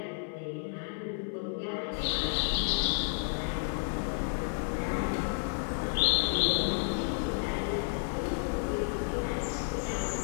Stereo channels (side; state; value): right; silent; 57 dB below the other